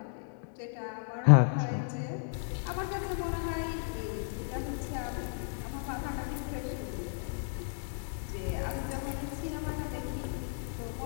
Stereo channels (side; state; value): right; silent; digital silence